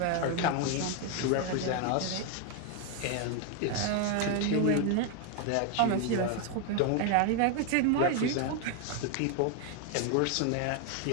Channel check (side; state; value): both; different; correlation 0.01